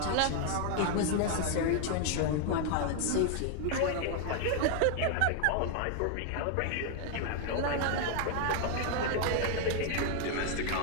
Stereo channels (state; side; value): different; both; correlation 0.00